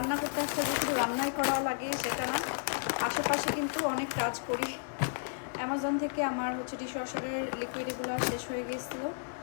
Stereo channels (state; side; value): silent; right; 56 dB below the other